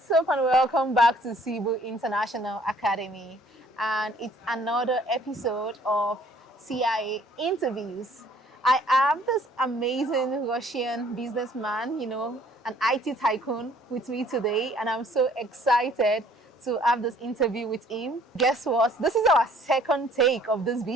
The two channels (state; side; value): normal; both; correlation 0.58